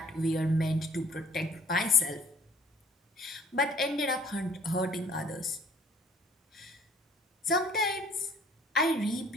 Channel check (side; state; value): both; normal; correlation 0.57